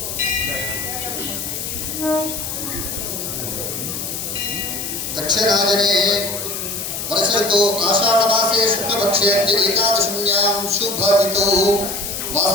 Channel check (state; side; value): noise; left; hiss, 5 dB below the sound